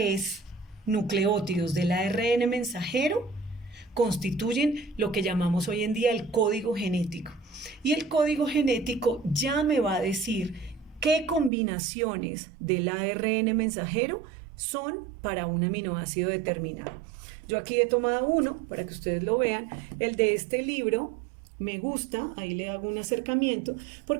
nucleótidos del ARN mensajero constituyen lo que llamamos hoy en día el código genético. Y el código genético ya me va a decir qué combinaciones del ARN mensajero son para un aminoácido determinado. Yo aquí he tomado uno para que ustedes lo vean, el de este libro. Me gusta, ahí le hago un acercamiento,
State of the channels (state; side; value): drops out; left; at 11.5 s